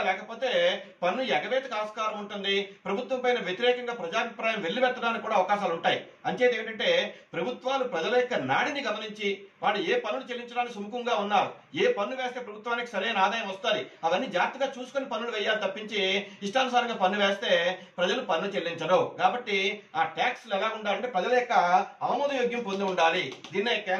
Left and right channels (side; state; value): both; identical; correlation 1.00